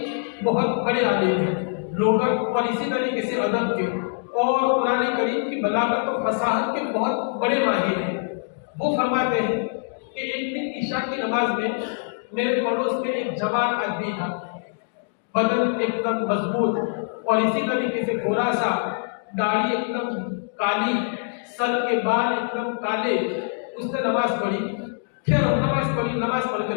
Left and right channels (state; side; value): silent; right; digital silence